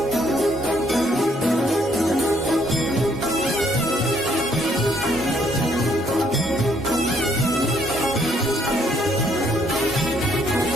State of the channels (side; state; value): both; normal; correlation 0.68